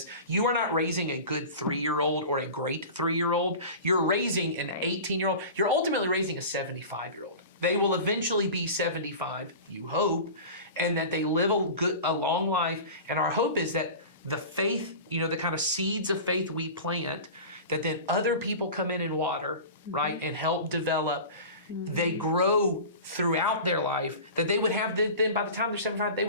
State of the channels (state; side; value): inverted; both; correlation -0.34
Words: You are not raising a good 3-year-old or a great 3-year-old. You're raising an 18-year-old. You're ultimately raising a 75-year-old. They will eventually be 75, you hope, and that they live a long life. And our hope is that the faith, the kind of seeds of faith we plant, that then other people come in and water, right, and help develop. They grow throughout their life, that they would have, then by the time they're 75, they